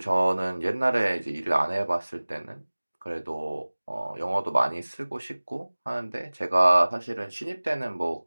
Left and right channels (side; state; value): both; inverted; correlation -1.00